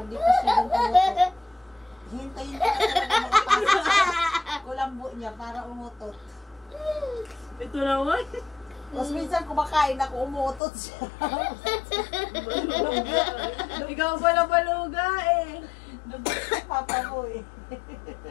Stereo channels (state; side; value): drops out; right; at 10.6 s